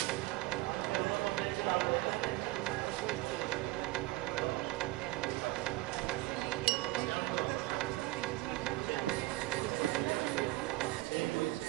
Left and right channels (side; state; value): left; quieter; 18.8 dB